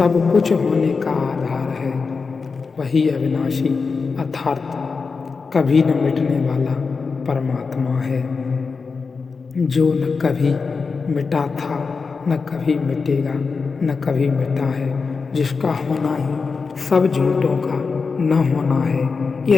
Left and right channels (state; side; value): quieter; right; 4.8 dB